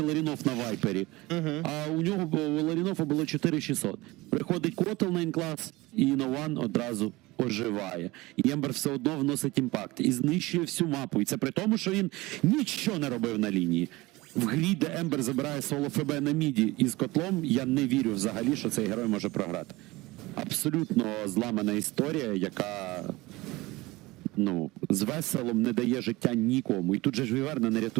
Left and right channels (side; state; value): left; quieter; 20.9 dB